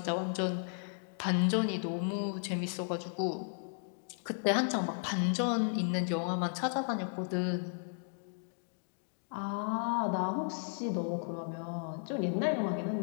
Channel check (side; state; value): right; silent; digital silence